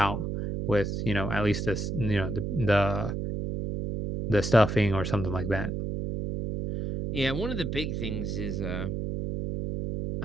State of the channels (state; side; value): noise; right; hum, 3 dB below the sound